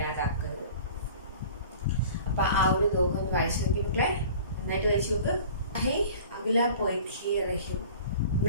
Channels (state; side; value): inverted; both; correlation -0.44